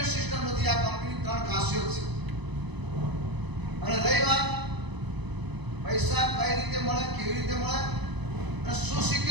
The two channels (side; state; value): left; late; 1.0 ms